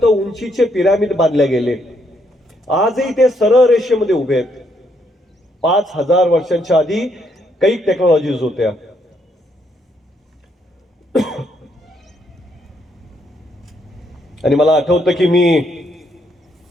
उंचीचे पिरामिड बांधले गेले. आजही ते सरळ रेषेमध्ये उभे आहेत. 5000 वर्षांच्या आधी काही टेक्नॉलॉजीज होत्या. आणि मला आठवतं की मी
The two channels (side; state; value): both; normal; correlation 0.74